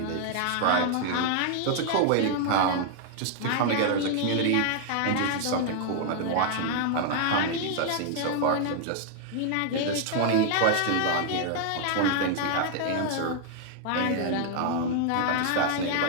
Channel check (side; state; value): both; different; correlation 0.00